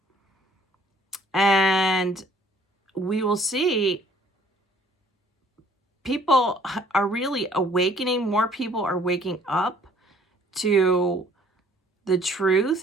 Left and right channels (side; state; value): both; normal; correlation 0.59